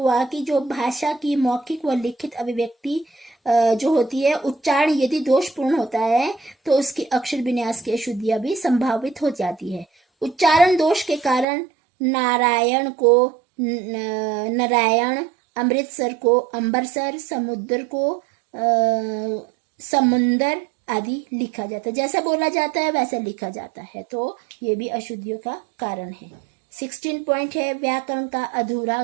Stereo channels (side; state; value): left; drops out; at 11.5 s